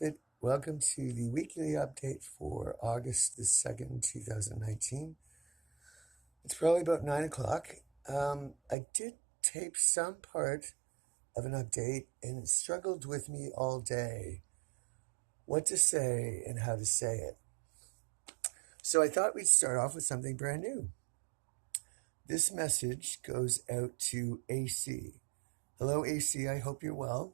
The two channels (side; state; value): left; drops out; at 8.8 s